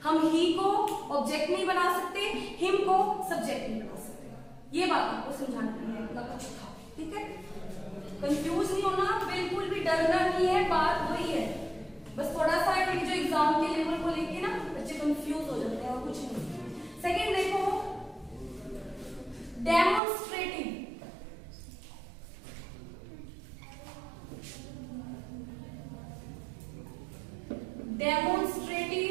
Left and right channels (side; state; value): left; drops out; at 20.0 s